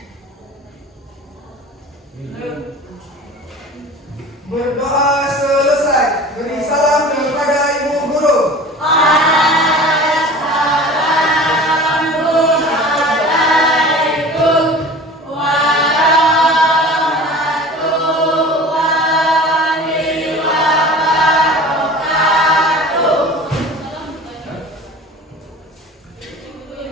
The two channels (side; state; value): both; normal; correlation 0.40